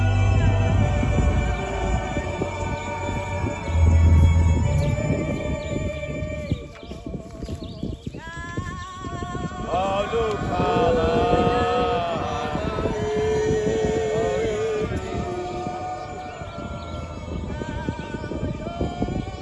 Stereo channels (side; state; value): both; identical; correlation 1.00